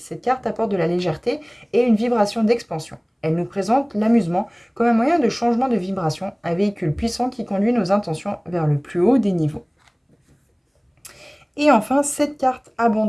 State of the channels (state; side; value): identical; both; correlation 1.00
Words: carte apporte de la légèreté et une vibration d'expansion. Elle nous présente l'amusement comme un moyen de changement de vibration, un véhicule puissant qui conduit nos intentions vers le plus haut des niveaux. Et enfin, cette carte